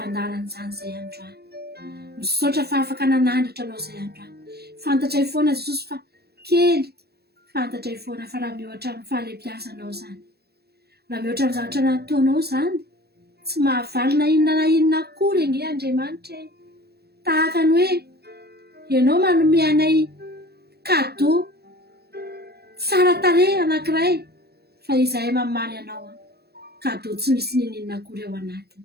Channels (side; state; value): left; late; 0.47 ms